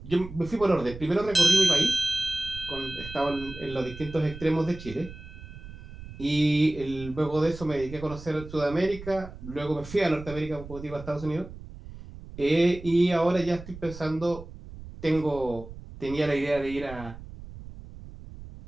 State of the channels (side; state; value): right; noise; rumble, 14 dB below the sound